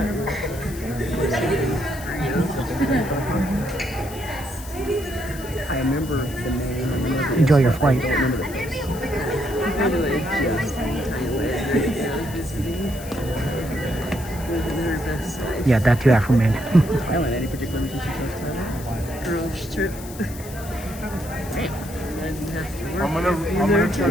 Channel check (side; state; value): left; noise; hiss, 16 dB below the sound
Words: Enjoy your flight. Yeah, that too, Afro-Man. Any particular reason she chose Thailand? Girls trip. I'm gonna try